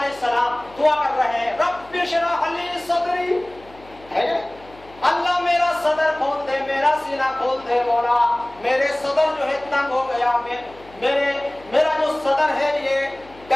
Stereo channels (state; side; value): noise; left; hum, 24 dB below the sound